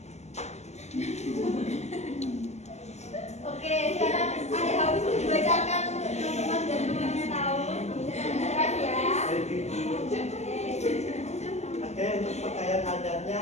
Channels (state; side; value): late; right; 0.32 ms